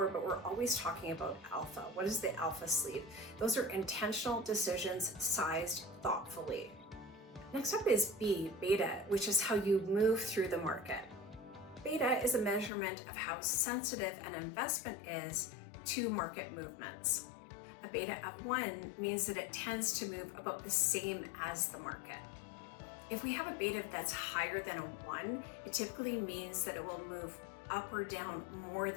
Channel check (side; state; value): right; drops out; at 12.7 s